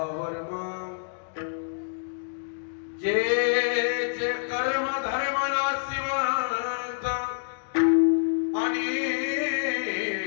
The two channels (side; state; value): right; silent; digital silence